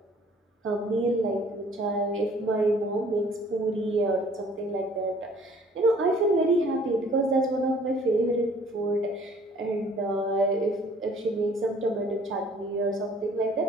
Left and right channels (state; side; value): normal; both; correlation 0.56